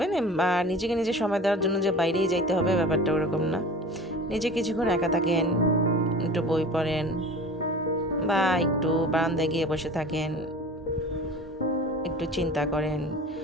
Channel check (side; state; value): both; normal; correlation 0.39